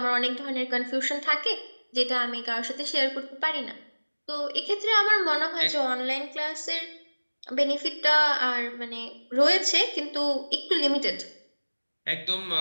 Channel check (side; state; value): both; inverted; correlation -1.00